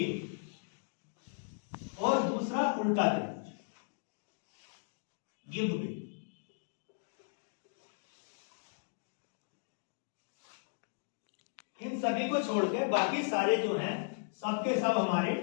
और दूसरा उल्टा त्रिभुज, गिव वे। इन सभी को छोड़ के बाकी सारे जो हैं सबके सब हमारे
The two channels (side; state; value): right; silent; digital silence